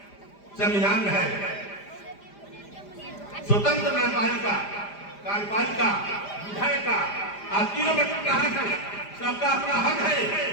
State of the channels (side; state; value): right; late; 5.0 ms